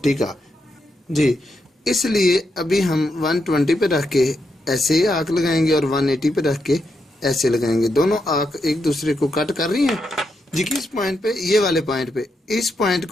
का। जी इसलिए अभी हम 120 पे रख के ऐसे आर्क लगाएंगे और 180 पे रख के ऐसे लगाएंगे। दोनों आर्क एक दूसरे को कट कर रही हैं जी, किस पॉइंट पे, ये वाले पॉइंट पे, इस पॉइंट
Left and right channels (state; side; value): normal; both; correlation 0.83